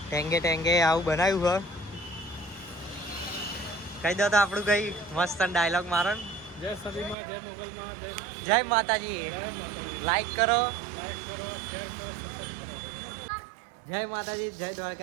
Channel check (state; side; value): drops out; left; at 7.2 s